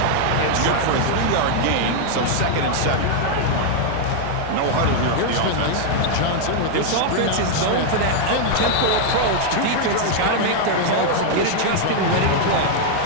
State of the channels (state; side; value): different; both; correlation 0.00